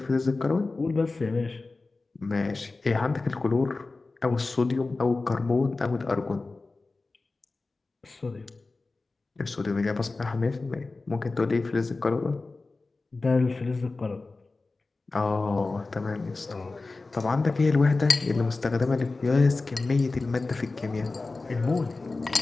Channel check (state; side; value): quieter; right; 3.6 dB